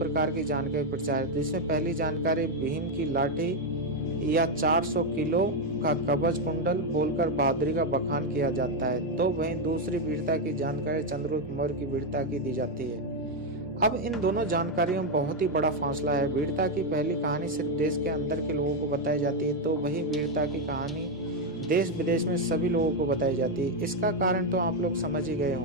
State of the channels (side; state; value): both; normal; correlation 0.04